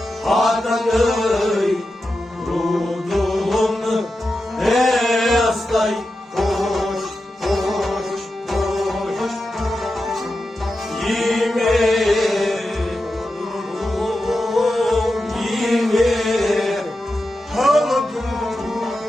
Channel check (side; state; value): both; normal; correlation 0.90